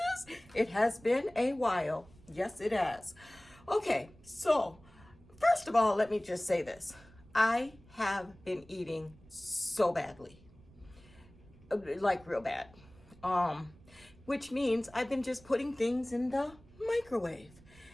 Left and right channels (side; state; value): right; noise; rumble, 24 dB below the sound